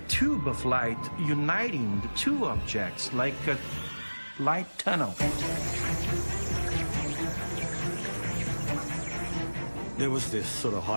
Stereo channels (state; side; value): inverted; both; correlation -1.00